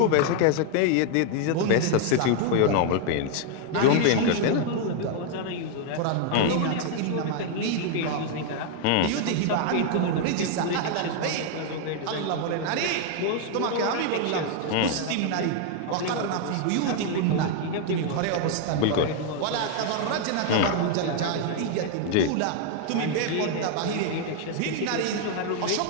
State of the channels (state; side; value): different; both; correlation 0.00